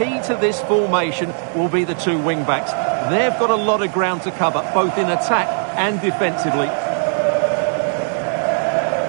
to this formation will be the two wing-backs. They've got a lot of ground to cover, both in attack and defensively.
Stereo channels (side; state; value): left; silent; 64 dB below the other